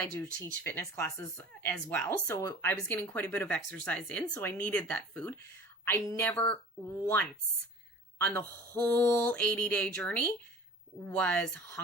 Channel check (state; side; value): normal; both; correlation 0.43